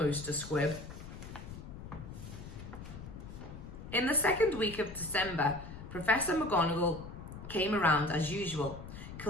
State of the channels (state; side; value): noise; left; rumble, 12 dB below the sound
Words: a squib. In the second week of December, Professor McGonagall came around as usual,